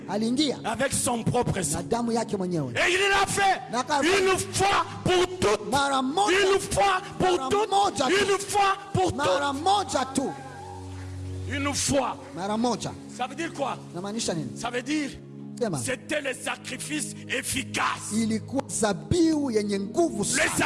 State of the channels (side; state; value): both; identical; correlation 1.00